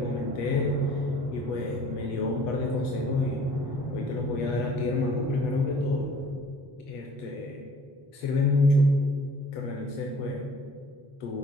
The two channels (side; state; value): right; late; 8.2 ms